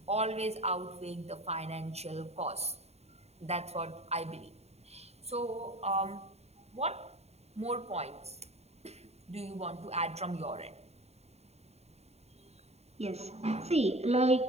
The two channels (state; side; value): late; left; 0.31 ms